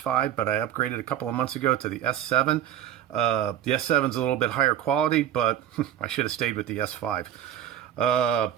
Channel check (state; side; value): quieter; left; 10.8 dB